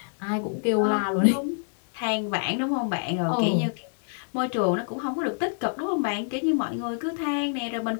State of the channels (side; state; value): right; silent; digital silence